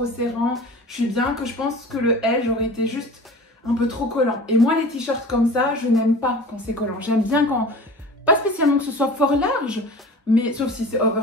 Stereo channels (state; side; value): normal; both; correlation 0.39